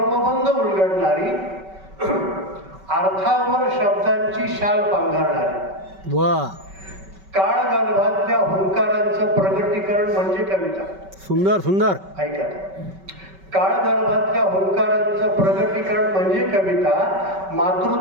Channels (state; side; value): late; left; 5.2 ms